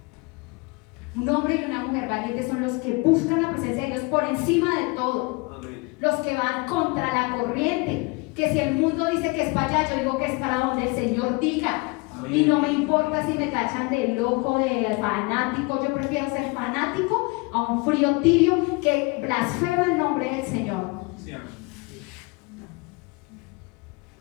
Un hombre y una mujer valientes son los que buscan la presencia de Dios por encima de todo. Amén. Los que van contra la corriente, que si el mundo dice que es para allá, yo digo que es para donde el Señor diga. Amén. Y no me importa si me tachan de loco, de fanático. Yo prefiero ser fanático a un frío tibio que blasfema el nombre del Señor. Sí, amén.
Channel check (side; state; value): right; quieter; 27.3 dB